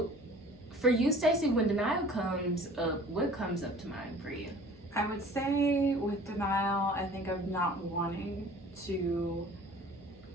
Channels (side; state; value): both; normal; correlation 0.47